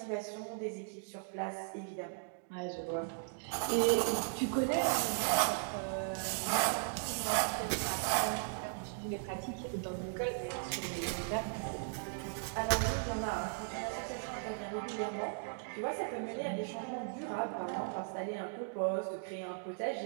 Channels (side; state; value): left; silent; digital silence